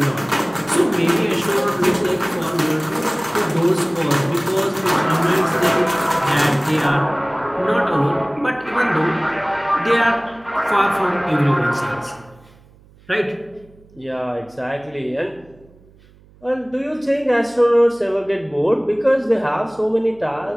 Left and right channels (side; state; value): right; noise; hum, 27 dB below the sound